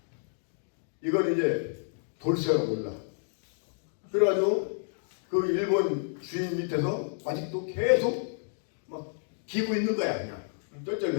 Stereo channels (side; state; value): right; silent; digital silence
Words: 이걸 이제 돌쇠가 몰라. 그래가지고 그 일본 주인 밑에서 아직도 계속 막 기고 있는 거야. 그냥